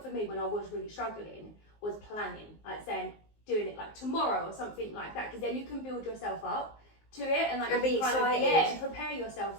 for me when I was really struggling was planning, like saying doing it like tomorrow or something like that, because then you can build yourself up to it and like And be you kind of, excited. and prepare yourself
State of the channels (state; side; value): late; right; 19 ms